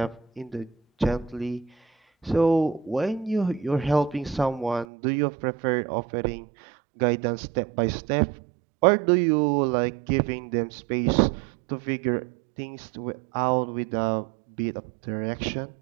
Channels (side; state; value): left; drops out; at 4.9 s